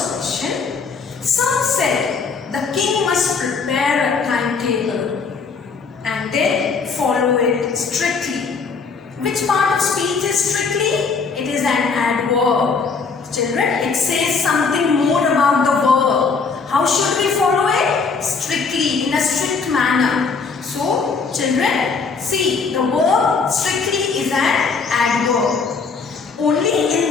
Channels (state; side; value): quieter; right; 5.0 dB